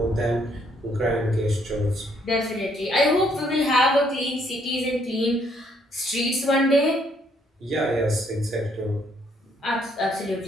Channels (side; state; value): both; normal; correlation 0.69